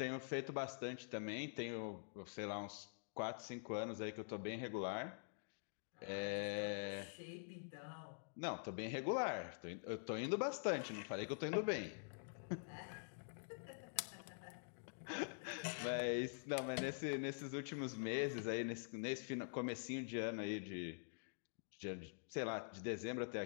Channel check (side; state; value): right; silent; digital silence